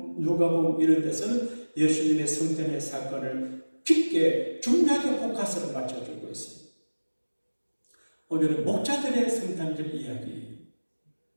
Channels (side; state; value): both; inverted; correlation -1.00